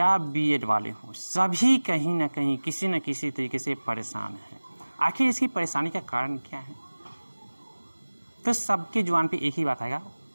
बीएड वाले हो, सभी कहीं ना कहीं किसी न किसी तरीके से परेशान हैं। आखिर इसकी परेशानी का कारण क्या है? तो सबके जुबान पे एक ही बात आएगा,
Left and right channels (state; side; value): inverted; both; correlation -1.00